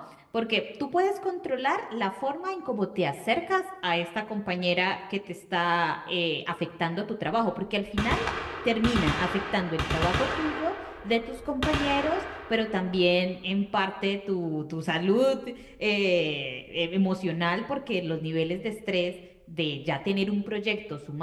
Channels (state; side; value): identical; both; correlation 1.00